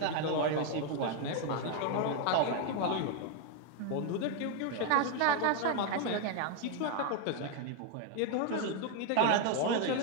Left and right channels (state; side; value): different; both; correlation 0.01